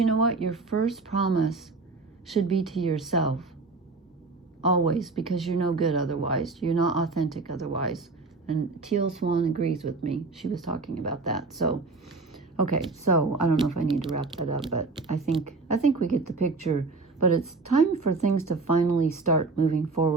know what? Your first promise should be to yourself. Always, because you're no good otherwise. You're not authentic otherwise. And Teal Swan agrees with me. She was talking about that. So, okay, so I don't know if I need to wrap that up, but I think we get the picture. But it's time for things to finally start moving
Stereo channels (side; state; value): left; quieter; 3.8 dB